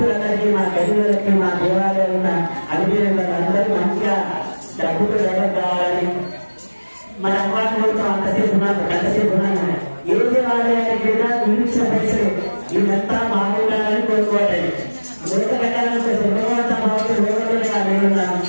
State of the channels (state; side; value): inverted; both; correlation -1.00